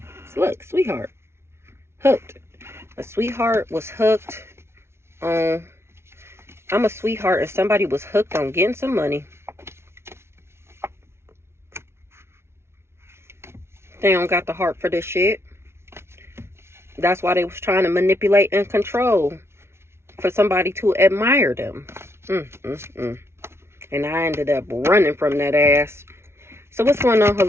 So look, sweetheart. Hooked. A sweetheart was hooked on... I'm a sweetheart and somebody was hooked on getting some money. They don't got the heart for this shit. That's why they was trying to manipulate and control for somebody to admire them. And I ended up running from that ass. So what's going on,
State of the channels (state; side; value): late; left; 0.12 ms